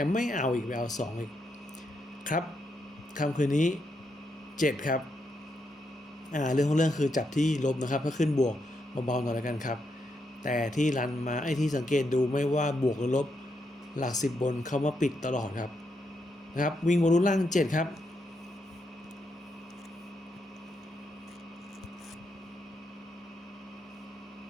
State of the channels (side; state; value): both; normal; correlation 0.81